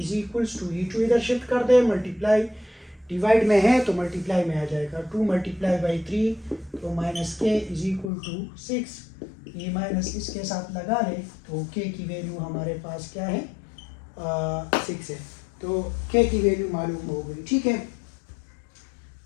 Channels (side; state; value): right; drops out; at 8.1 s